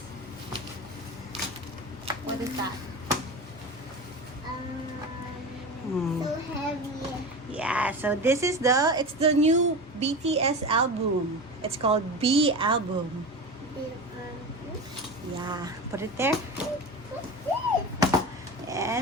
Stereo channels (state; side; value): normal; both; correlation 0.27